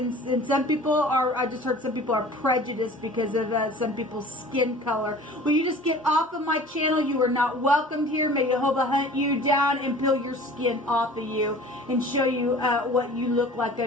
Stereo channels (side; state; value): both; normal; correlation 0.44